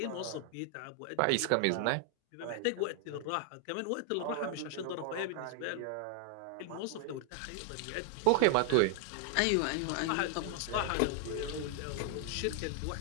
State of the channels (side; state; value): both; different; correlation -0.01